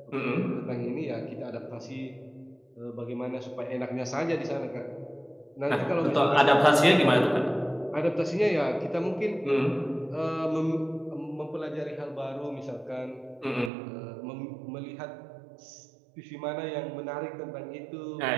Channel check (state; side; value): drops out; left; at 13.7 s